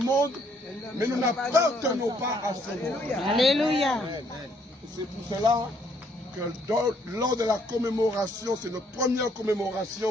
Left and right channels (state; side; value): normal; both; correlation 0.68